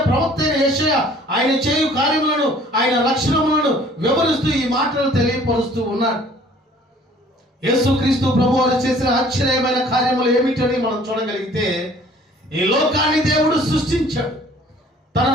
ప్రవక్త అయిన యెషయా ఆయన చేయు కార్యములను, ఆయన లక్షణములను వివరిస్తూ ఈ మాటలు తెలియపరుస్తూ ఉన్నాడు. యేసుక్రీస్తు ప్రభువారు చేసిన ఆశ్చర్యమైన కార్యములు ఏమిటని మనం చూడగలిగితే, ఈ లోకాన్ని దేవుడు సృష్టించాడు. తన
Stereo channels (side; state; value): both; normal; correlation 0.54